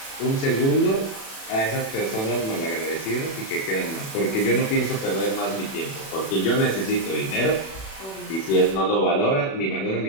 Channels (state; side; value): late; right; 36 ms